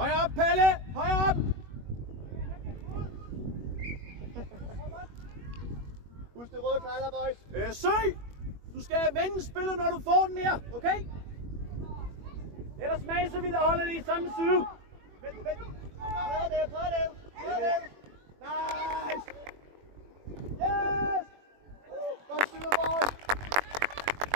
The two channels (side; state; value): left; late; 21 ms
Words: op, Palle! Højere op! Husk det røde tegler, boys. Søg! Du skal vende spillet, når du får den her, okay? Ellers maser vi det og holder det i samme side. Vent. Prøv det. Nice! Yes! Godt styrer, boys!